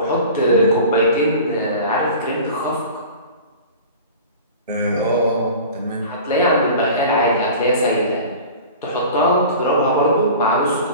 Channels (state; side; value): inverted; both; correlation -0.39